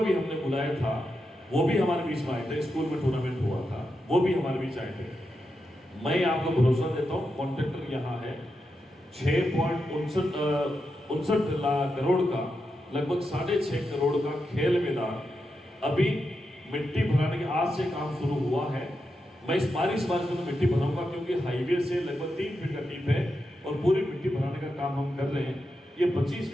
भी हमने बुलाया था, वो भी हमारे बीच में आए थे। स्कूल में टूर्नामेंट हुआ था, वो भी हमारे बीच आए थे। मैं आपको भरोसा देता हूँ, कॉन्ट्रैक्टर यहाँ है, 6.59 लाख करोड़ का, लगभग 6.5 करोड़ का खेल मैदान अभी मिट्टी भराने के आज से काम शुरू हुआ है। मैं इस बारिश में तो मिट्टी भरूंगा, क्योंकि हाईवे से लगभग 3 फीट का डीप है और पूरी मिट्टी भराने का काम हम कर रहे हैं। ये 25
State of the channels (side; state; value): both; normal; correlation 0.87